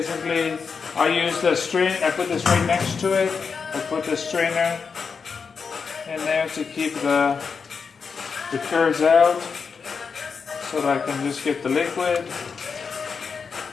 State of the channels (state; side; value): quieter; right; 5.6 dB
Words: I use the strain. I put this right next to it. I put the strainer in there to keep the curds out, so that I can just get the liquid.